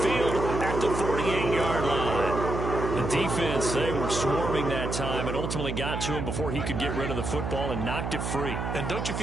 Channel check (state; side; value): noise; right; hum, 3 dB below the sound